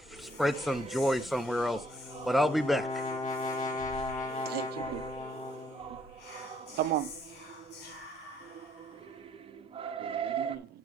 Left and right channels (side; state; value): both; normal; correlation 0.65